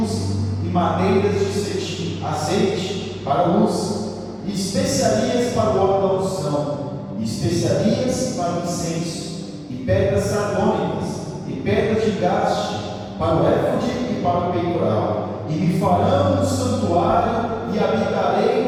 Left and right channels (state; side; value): identical; both; correlation 1.00